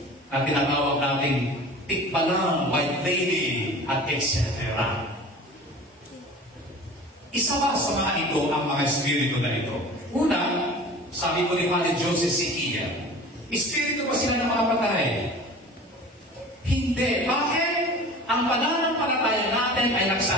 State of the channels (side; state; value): both; normal; correlation 0.40